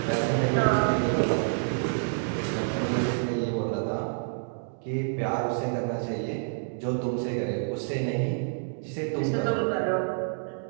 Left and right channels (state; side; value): silent; left; digital silence